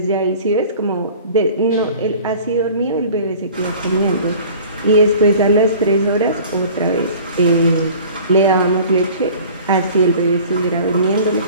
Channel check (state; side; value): inverted; both; correlation -0.45